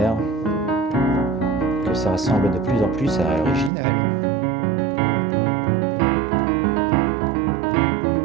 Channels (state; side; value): drops out; left; at 3.7 s